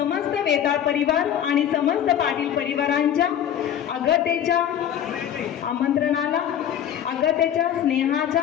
वेताळ परिवार आणि समस्त पाटील परिवारांच्या अगतेच्या आमंत्रणाला अगतेच्या स्नेहाच्या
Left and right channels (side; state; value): right; quieter; 9.9 dB